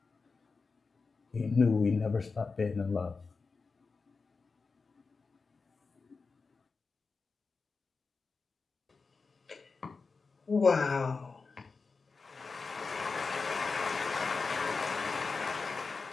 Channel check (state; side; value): quieter; right; 4.4 dB